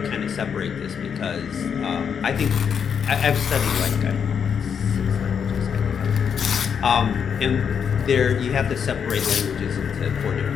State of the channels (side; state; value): right; quieter; 7.2 dB